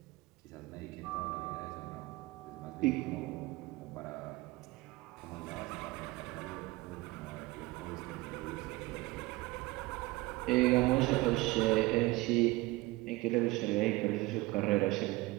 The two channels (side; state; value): left; quieter; 20.8 dB